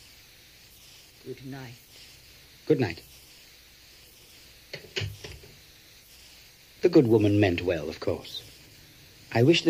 Good night. Good night. The good woman meant well, of course. I wish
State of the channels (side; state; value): both; identical; correlation 1.00